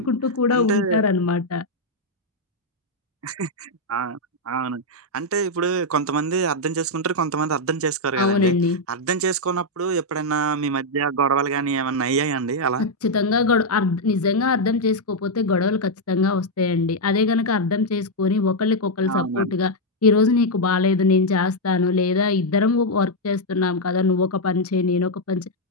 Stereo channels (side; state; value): both; normal; correlation -0.01